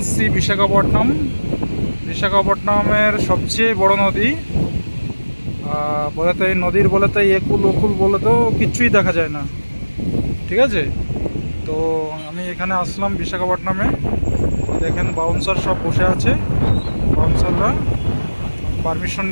বিশাখাপট্টনমের সবচেয়ে বড় নদী। বলে তো এই নদীর বলে তো একুল ওকুল বলে তো কিচ্ছুই দেখা যায় না, ঠিক আছে। তো আমি এখানে আসলাম বিশাখাপট্টনমে। দেখেন বাউন্সার সব বসে আছে, বাউন্সাররা। পারমিশন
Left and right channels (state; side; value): inverted; both; correlation -1.00